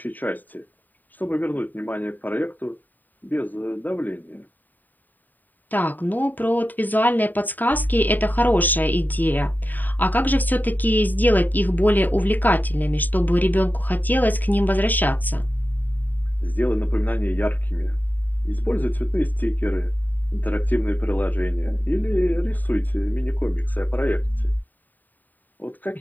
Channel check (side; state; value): right; late; 0.087 ms